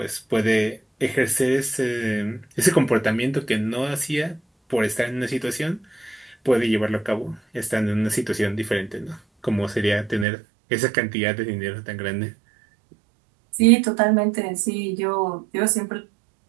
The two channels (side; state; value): left; drops out; at 10.2 s